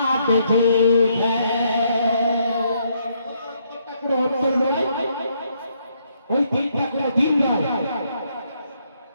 ठीक है। ওই দিনটা কোনো দিন নয়,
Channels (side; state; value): both; inverted; correlation -0.73